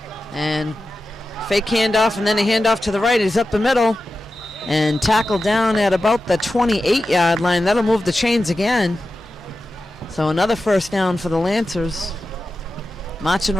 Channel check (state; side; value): normal; both; correlation 0.92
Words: And fake handoff and then a handoff to the right. He's up the middle and tackled down at about the 28-yard line. That'll move the chains again. So another first down for the Lancers. marching